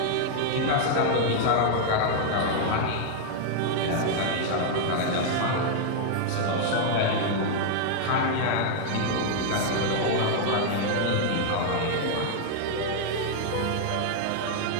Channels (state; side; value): different; both; correlation 0.00